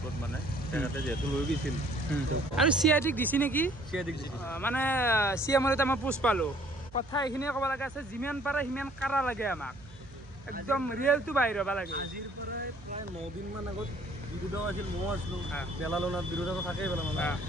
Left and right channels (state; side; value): noise; right; hum, 22 dB below the sound